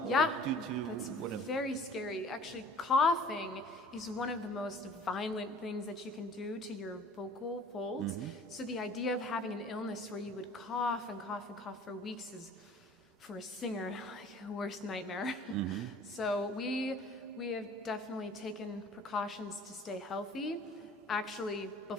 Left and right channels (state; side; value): normal; both; correlation 0.49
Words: or Yeah, due to that's whatever? very scary. Actually, coughing is one of the most violent things that you can do to your vocal folds. So the idea of having an illness where you would cough and cough and cough for weeks is, for a singer, like a worst nightmare. So we have definitely taken precautions to stay healthy. Actually,